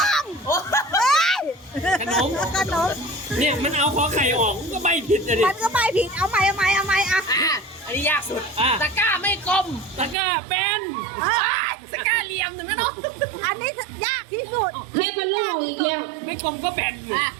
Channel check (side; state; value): left; drops out; at 10.2 s